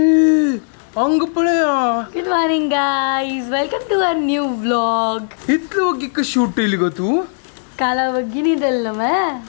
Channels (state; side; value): silent; right; digital silence